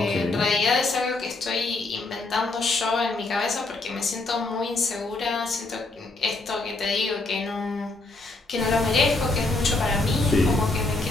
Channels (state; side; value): quieter; right; 3.3 dB